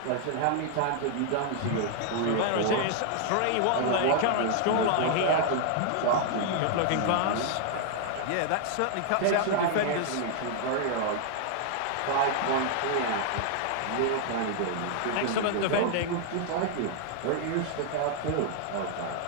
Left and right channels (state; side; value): different; both; correlation 0.00